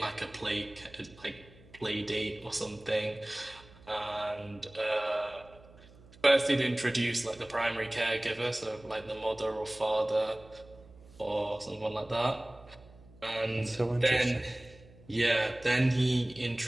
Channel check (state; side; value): noise; right; hum, 23 dB below the sound